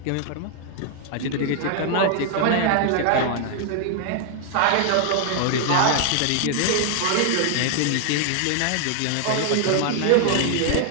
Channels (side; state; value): both; different; correlation 0.00